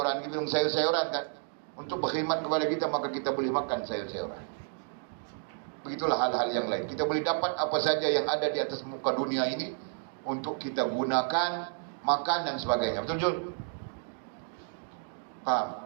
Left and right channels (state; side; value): silent; left; 56 dB below the other